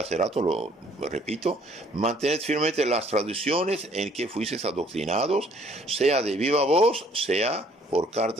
rato, lo repito, mantened firmemente las tradiciones en que fuisteis adoctrinados, sea de viva voz, sea por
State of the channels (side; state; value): both; normal; correlation 0.60